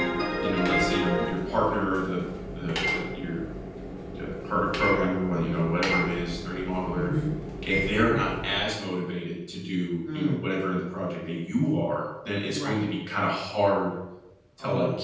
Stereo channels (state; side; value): identical; both; correlation 1.00